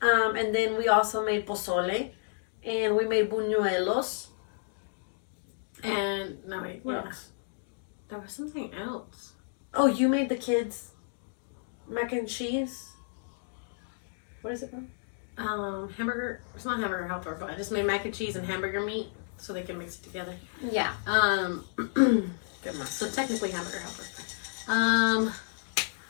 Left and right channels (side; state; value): right; silent; digital silence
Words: and then we also made pozole, and we made buñuelos. And no wait, What yeah. else? There was something else. Oh, you made the kids mac and cheese. What is it called? Hamburger. It's not hamburger helper, but I just made mac and cheese and hamburger meat so they can mix it together. Yeah. So technically hamburger helper.